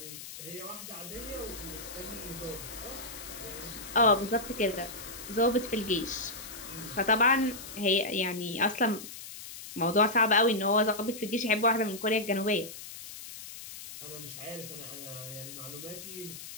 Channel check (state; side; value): noise; left; hiss, 12 dB below the sound